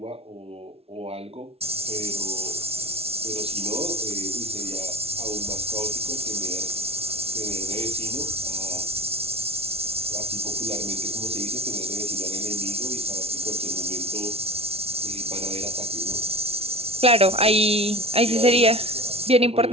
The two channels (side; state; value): left; late; 0.29 ms